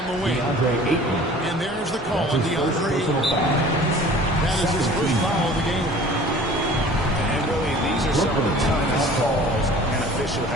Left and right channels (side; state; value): both; normal; correlation 0.46